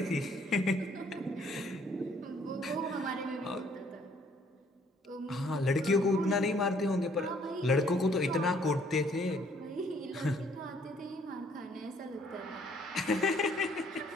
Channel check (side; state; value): both; normal; correlation 0.63